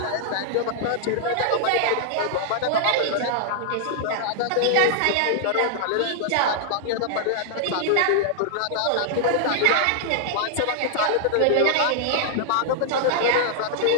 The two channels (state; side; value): different; both; correlation -0.01